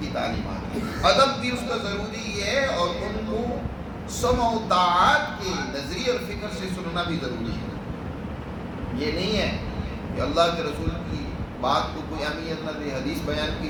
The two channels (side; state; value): both; identical; correlation 1.00